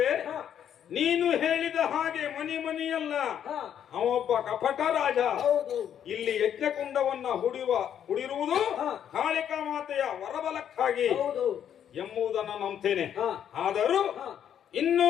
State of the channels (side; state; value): right; quieter; 9.4 dB